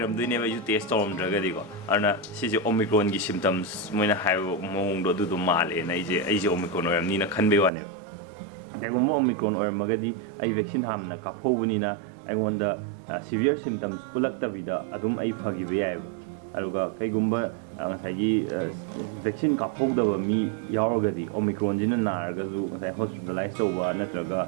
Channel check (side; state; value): left; drops out; at 7.7 s